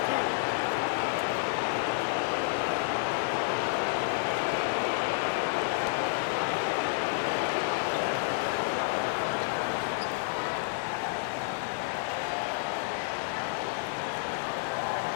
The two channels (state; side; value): silent; right; digital silence